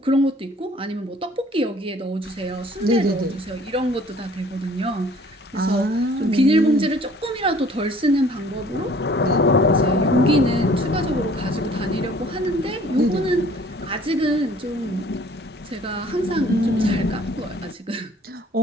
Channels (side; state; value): both; normal; correlation 0.54